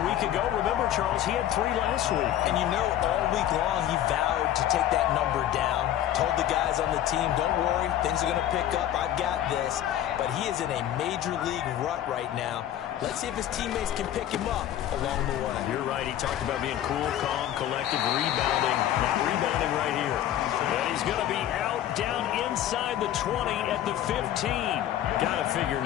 week ago. Remember, Charles, he had 3 last week. And you know, all week long he vowed to take that number down. Told the guys on the team, don't worry, things are going to pick up. I've got this. But he is in a major league rut right now. Let's see if his teammates can pick him up along the way. You're right. He talked about being cool, calm, collective, rebounding. Not rebounding right here. And he's going to be out down inside the 20 at the 15. Got to figure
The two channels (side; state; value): right; quieter; 11.8 dB